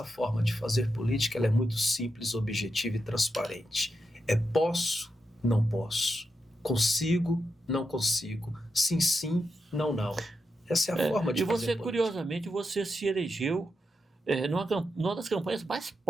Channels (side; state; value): both; normal; correlation 0.86